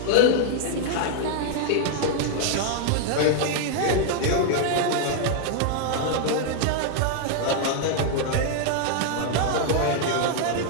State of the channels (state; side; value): different; both; correlation 0.00